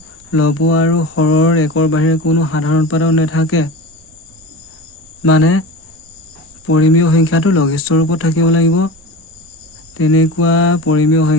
লব আৰু হৰৰ একৰ বাহিৰে কোনো সাধাৰণ উৎপাদক নাথাকে, মানে পৰিমেয় সংখ্যাটো লঘিষ্ঠ ৰূপত থাকিব লাগিব। তেনেকুৱা পৰিমেয়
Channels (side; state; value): both; normal; correlation 0.30